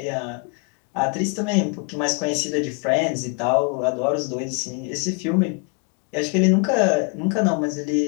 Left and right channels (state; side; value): quieter; right; 34.6 dB